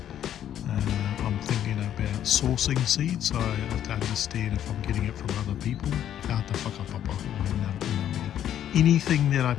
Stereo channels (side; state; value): right; quieter; 10.7 dB